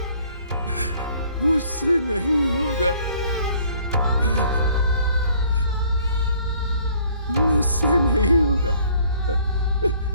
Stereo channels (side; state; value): both; inverted; correlation -0.59